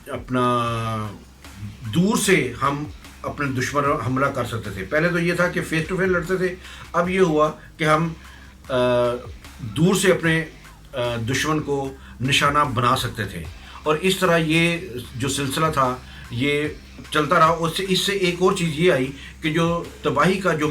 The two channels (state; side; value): identical; both; correlation 1.00